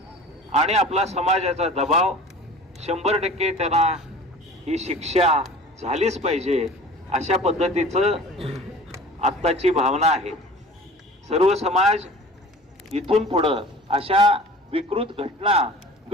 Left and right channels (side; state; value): both; normal; correlation 0.42